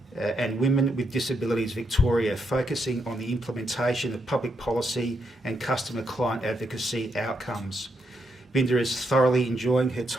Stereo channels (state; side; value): normal; both; correlation 0.79